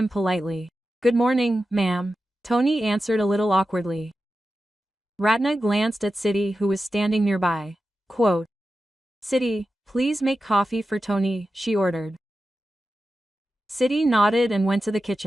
politely. Good morning, ma'am. Tony answered a little awkwardly. Ratna glanced at Siddhi who was standing nearby. Quote, Siddhi, please make coffee for Tony, she ordered. Siddhi nodded and went to the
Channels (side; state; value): both; normal; correlation 0.92